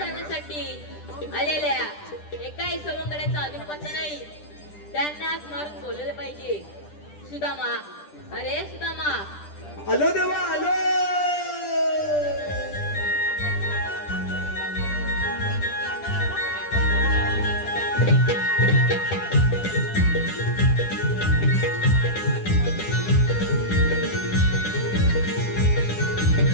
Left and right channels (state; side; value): late; right; 10 ms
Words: आलेल्या एकाही सवंगड्याचा अजून पत्ता नाही. त्यांना हाक मारून बोलले पाहिजे. सुदामा, अरे सुदामा. आलो देवा आलो.